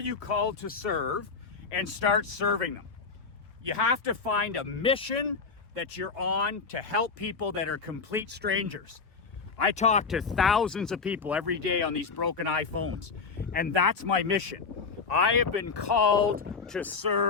called to serve? And start serving them. You have to find a mission that you're on to help people that are complete strangers. I talk to thousands of people every day on these broken iPhones, and that's my mission. I have been called to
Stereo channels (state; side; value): quieter; right; 5.0 dB